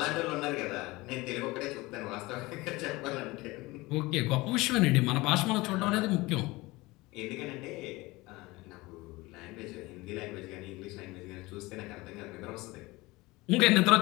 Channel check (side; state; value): right; quieter; 21.5 dB